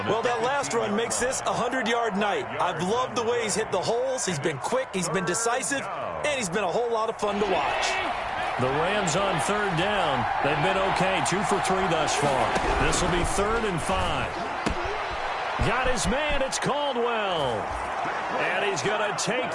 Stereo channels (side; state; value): both; identical; correlation 1.00